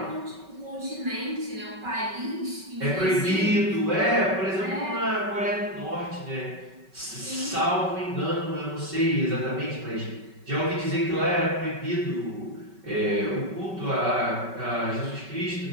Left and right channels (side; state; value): left; late; 5.3 ms